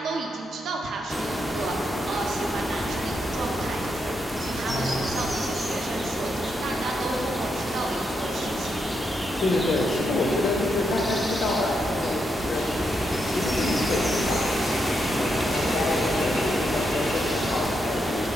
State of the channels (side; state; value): both; normal; correlation 0.82